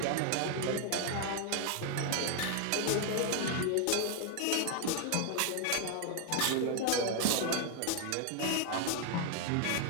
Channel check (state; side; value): different; both; correlation 0.00